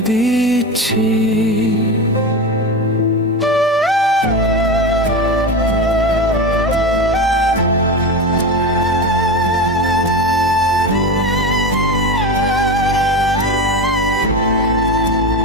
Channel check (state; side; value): normal; both; correlation 0.22